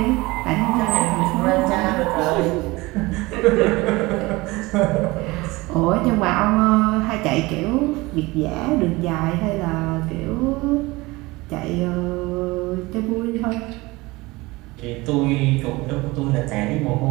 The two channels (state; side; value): quieter; left; 21.9 dB